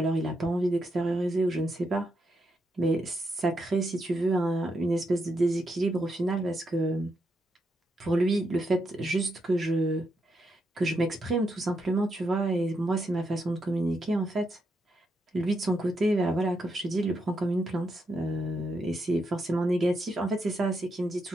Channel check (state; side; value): normal; both; correlation 0.81